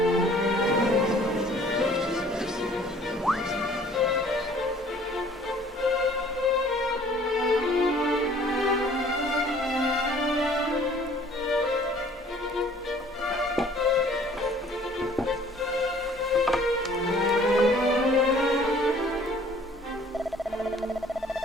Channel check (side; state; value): both; normal; correlation 0.54